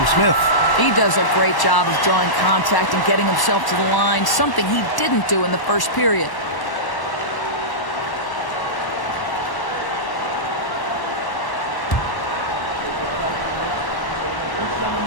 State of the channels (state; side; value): late; right; 1.1 ms